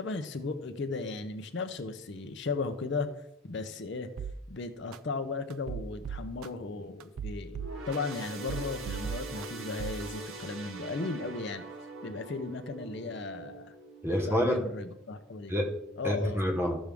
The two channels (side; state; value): both; normal; correlation 0.46